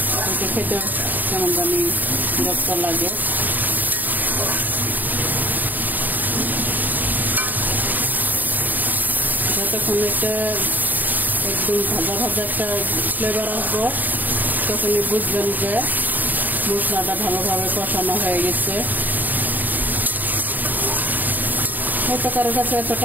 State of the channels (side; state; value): left; late; 0.086 ms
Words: খেতে কেমন জানি বিরক্ত লাগে। যতক্ষণ একটা একদম ভাজা ভাজা একটা ফ্লেভার আসবো তখনই বুঝবেন যে মশলাটা ভালোভাবে কষানো হয়ে গেছে। হয়তো কারো কাছে এত